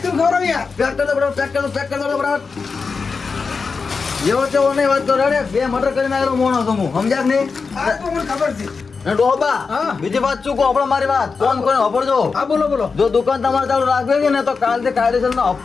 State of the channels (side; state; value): right; quieter; 4.9 dB